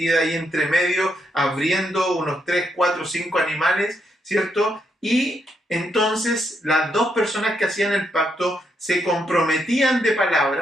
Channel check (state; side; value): normal; both; correlation 0.78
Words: ahí entre medio, abriendo unos 3, 4, 5 animales, ¿cierto? Y entonces las dos personas que hacían el pacto se comprometían de